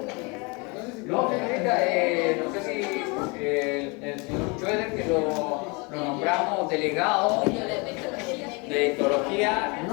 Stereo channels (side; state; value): right; quieter; 29.4 dB